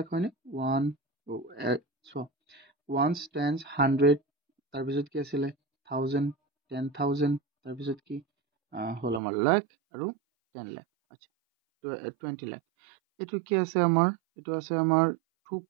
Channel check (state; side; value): drops out; left; at 9.2 s